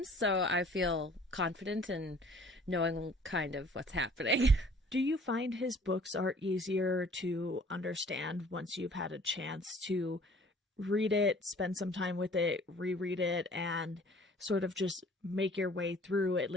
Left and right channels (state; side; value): normal; both; correlation 0.53